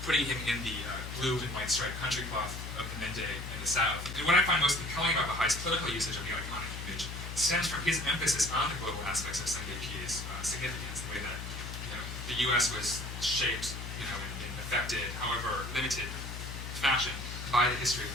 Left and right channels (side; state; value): left; noise; hum, 7 dB below the sound